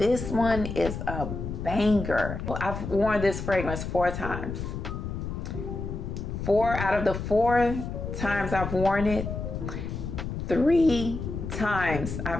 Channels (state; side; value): noise; left; rumble, 5 dB below the sound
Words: one is a banger. I've worn this fragrance 4 times. 4 out of the 4 times I've worn it, 3 times